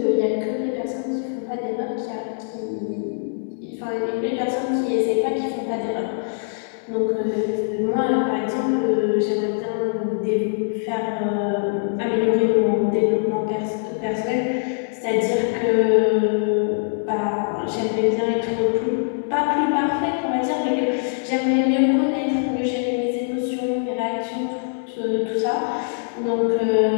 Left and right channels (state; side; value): silent; right; digital silence